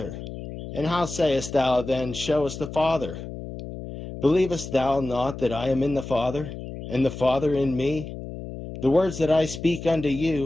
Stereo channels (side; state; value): left; noise; hum, 10 dB below the sound